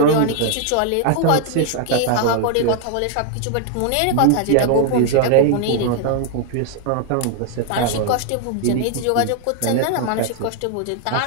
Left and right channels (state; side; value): different; both; correlation 0.00